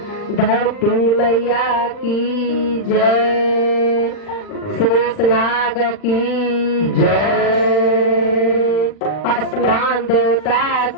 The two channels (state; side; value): late; right; 40 ms